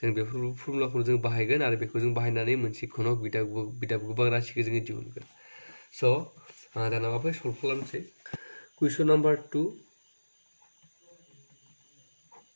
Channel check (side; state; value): both; inverted; correlation -1.00